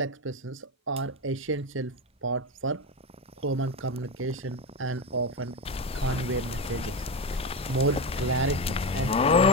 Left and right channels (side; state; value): both; normal; correlation 0.15